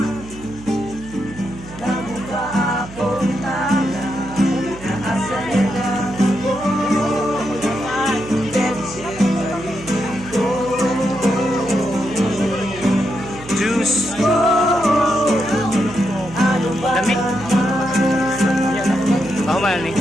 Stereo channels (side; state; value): right; noise; hum, 17 dB below the sound